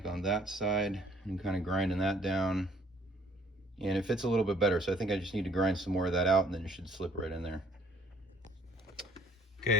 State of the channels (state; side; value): normal; both; correlation 0.59